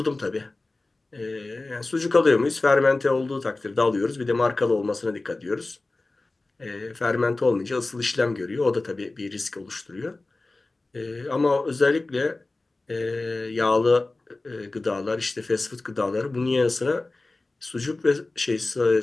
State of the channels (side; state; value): right; quieter; 3.2 dB